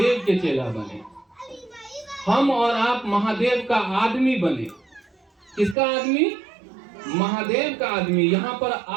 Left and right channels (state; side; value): drops out; left; at 5.8 s